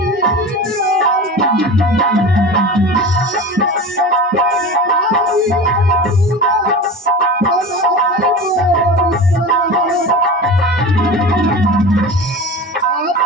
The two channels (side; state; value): both; normal; correlation 0.31